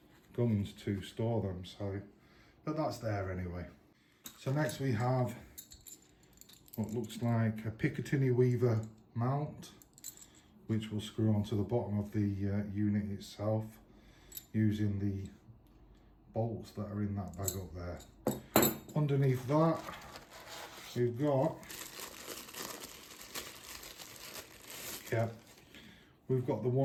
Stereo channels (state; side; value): identical; both; correlation 1.00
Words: guns to store them, so, but that's there anyway. So next we have what looks like a Picatinny Weaver mount, which will screw onto the bottom of the unit itself using the bolts that are in that bag up there. Underneath that we've got, we've got the